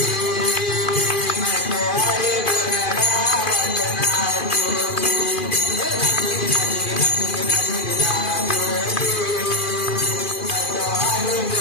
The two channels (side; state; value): right; late; 2.4 ms